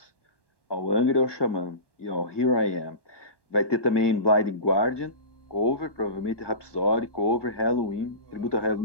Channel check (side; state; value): right; late; 1.1 ms